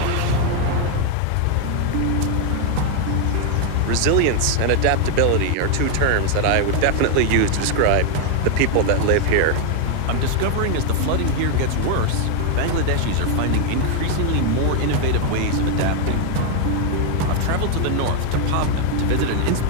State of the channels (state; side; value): different; both; correlation 0.01